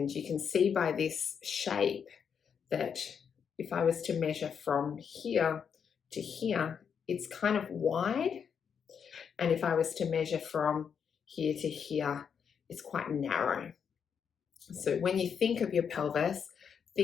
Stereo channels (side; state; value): right; quieter; 7.1 dB